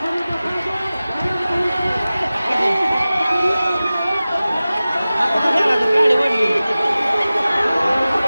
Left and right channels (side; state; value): both; inverted; correlation -0.97